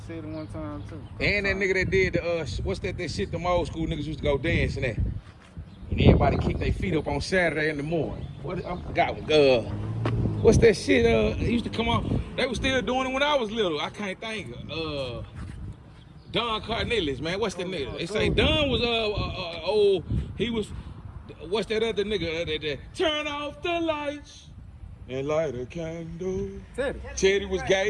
said it one time too. And that nigga that did what's that shit them old school niggas used to go dancing at. And everybody kick their feet up on Saturday in the morning. What I forgot what's that shit it used to come on. They was still doing it when I was little. I can't think Don Cornelius, man. What's that nigga? They say Don was old. He was what's that other nigga that turn off the lights and light a candle. Teddy was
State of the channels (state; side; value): identical; both; correlation 1.00